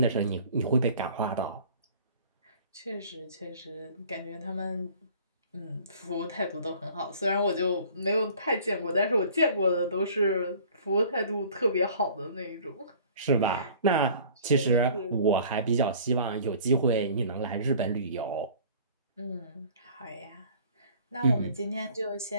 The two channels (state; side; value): inverted; both; correlation -0.49